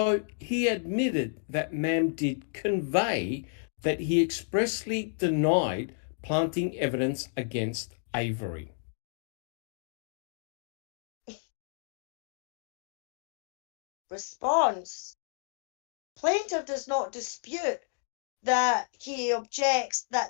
he admitted that Ma'am did convey that he expressly denied planting evidence against Avery. Response. Plaintiff does not dispute that he objects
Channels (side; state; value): right; silent; digital silence